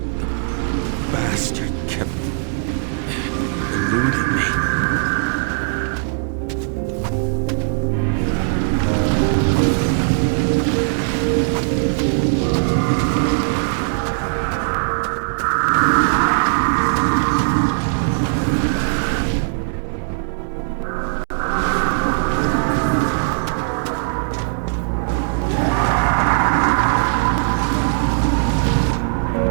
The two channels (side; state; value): left; silent; 66 dB below the other